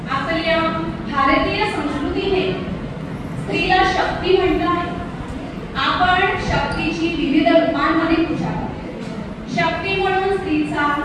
आपल्या भारतीय संस्कृतीने स्त्रीला शक्ती म्हटलं आहे। आपण शक्तीची विविध रूपांमध्ये पूजा करतो। शक्ती म्हणून स्त्रीचा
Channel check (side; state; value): both; identical; correlation 1.00